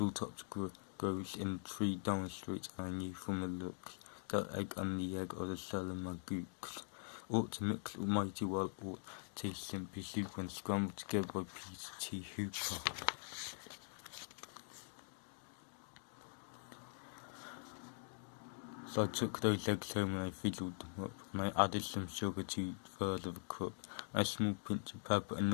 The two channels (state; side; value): silent; right; digital silence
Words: grows in 3 down the street, and I knew from the looks that egg and the egg of the Salamagoose ought to mix mighty well, or taste simply soup when scrambled together by Peter T. Hooper. So I took those eggs home and I fizzled them up, and I added some sugar to 1/3 of a cup, and a small pinch of pepper, and